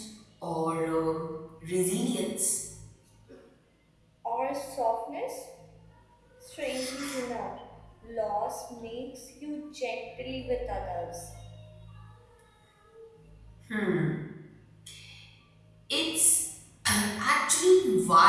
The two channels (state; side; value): identical; both; correlation 1.00